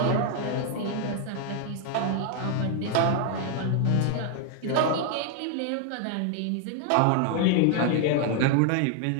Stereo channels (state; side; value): different; both; correlation 0.00